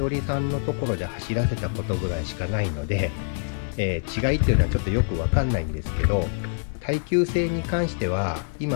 りさんのところで走らせたことぐらいしかないので、違いっていうのはちょっとよくわかんないんですけど、耐久性に関しては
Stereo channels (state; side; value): silent; right; 56 dB below the other